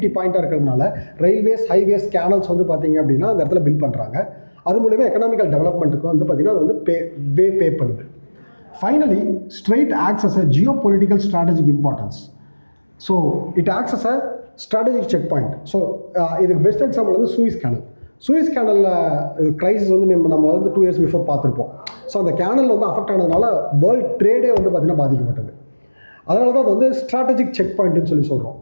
பாயிண்ட்டாக இருக்கிறதுனால ரயில்வேஸ், ஹைவேஸ், கேனல்ஸ் வந்து பார்த்தீங்க அப்படின்னா அந்த இடத்துல பில்ட் பண்ணுறாங்க. அது மூலமா எக்கனாமிக்கல் டெவலப்மெண்ட்டுக்கு வந்து பார்த்திங்கன்னா அது வந்து பே பண்ணுது. Finally strait acts as a geo political strategic importance. So it acts as a strategic check point. So இதுக்கு பெஸ்ட் எக்ஸாம்பிள் வந்து சூயிஸ் கேனலில் க்ரைசிஸ் வந்து நம்ம வந்து 2 years பிஃபோர் பார்த்துருப்போம். ஸோ அந்த கேனல் வந்து அஃபெக்ட் ஆனதுனால வேர்ல்டு ட்ரேடே வந்து பார்த்திங்கன்னா பாதிக்கப்பட்டது. அதனால தான் அது வந்து ஸ்ட்ராட்டஜிக் செக் பாயிண்ட்னு சொல்கிறோம்.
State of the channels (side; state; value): both; inverted; correlation -1.00